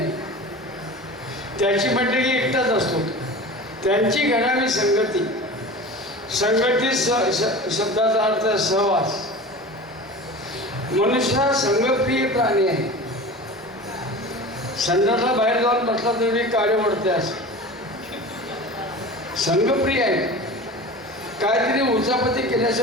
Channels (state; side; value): normal; both; correlation 0.34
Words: त्याची म्हटलं की एकटाच असतो. त्यांची घडावी संगती, संगती शब्दाचा अर्थ सहवास. मनुष्य हा संगप्रिय प्राणी आहे. संडासला बाहेर जाऊन बसला तरी काळे ओढते असं संगप्रिय आहे. काहीतरी उचापती